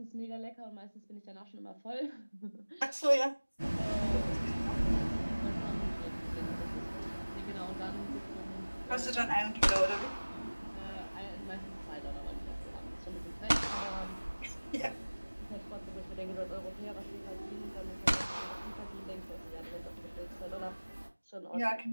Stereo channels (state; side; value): inverted; both; correlation -1.00